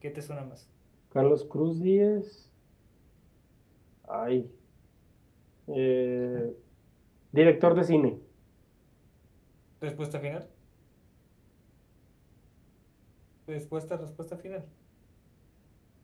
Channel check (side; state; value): both; identical; correlation 1.00